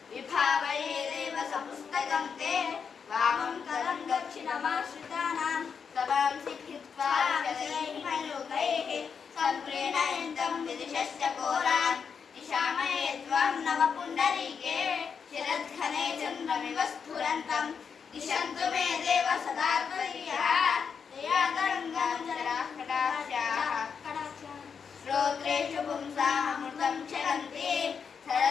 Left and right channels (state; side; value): quieter; right; 6.4 dB